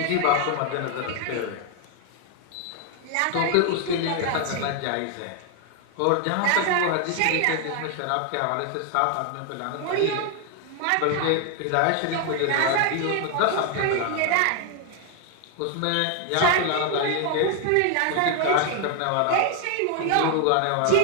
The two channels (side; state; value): both; different; correlation 0.00